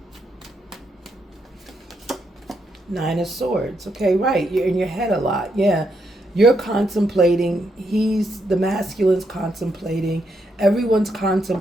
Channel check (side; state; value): both; normal; correlation 0.79